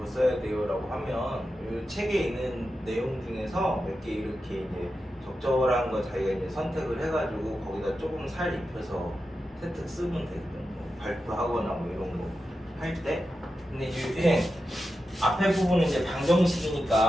써야 돼요라고 하면 이 책에 있는 내용 중에서 몇 개 이렇게 이제 적절한 거 자기가 이제 선택을 해가지고 거기다 조금 살 입혀서 세특 쓰면 되거든. 뭐 발표하거나 뭐 이런 거 할 때. 근데 이제 앞에 부분은 이제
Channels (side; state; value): both; normal; correlation 0.90